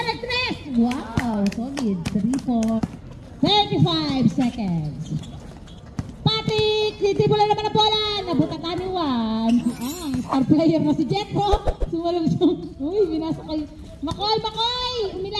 at 3. Wow, solid. 3 35 seconds. Patrick! Titibulan naman ang bola. Nabutakan ni Juan. Ang star player na si Jetro. Sumalong siya. Uy, pinasa kay Makoy! Makoy!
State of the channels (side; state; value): both; identical; correlation 1.00